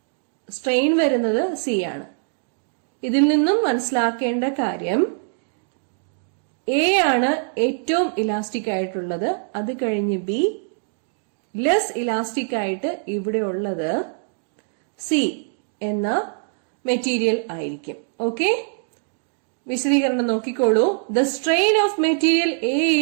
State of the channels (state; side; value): silent; left; digital silence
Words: സ്ട്രെയിൻ വരുന്നത് സി ആണ്. ഇതിൽ നിന്നും മനസ്സിലാക്കേണ്ട കാര്യം എ ആണ് ഏറ്റവും ഇലാസ്റ്റിക് ആയിട്ടുള്ളത്, അത് കഴിഞ്ഞ് ബി, ലെസ് ഇലാസ്റ്റിക് ആയിട്ട് ഇവിടെ ഉള്ളത് സി എന്ന മെറ്റീരിയൽ ആയിരിക്കും. ഓക്കെ, വിശദീകരണം നോക്കിക്കോളൂ. The strain of material A